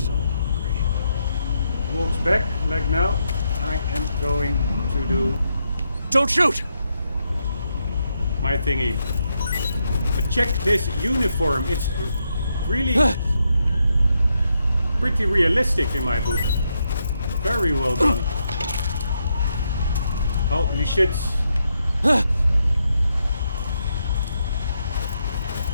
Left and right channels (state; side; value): inverted; both; correlation -0.81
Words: walks back, like now, I am going to do... Don't shoot! My thingy. But check this uniform, it's really pretty realistic in my book. Very well done. Holy shit.